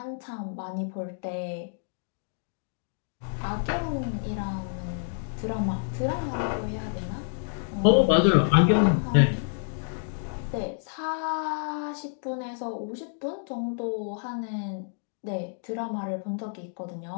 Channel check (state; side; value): silent; right; digital silence